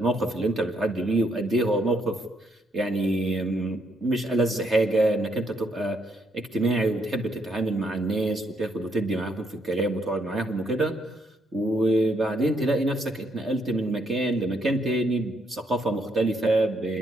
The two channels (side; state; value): both; normal; correlation 0.74